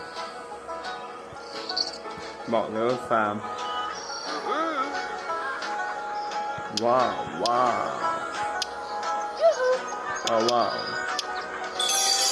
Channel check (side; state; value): both; identical; correlation 1.00